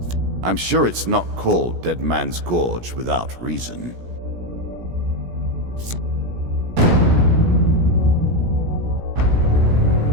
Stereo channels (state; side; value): late; left; 17 ms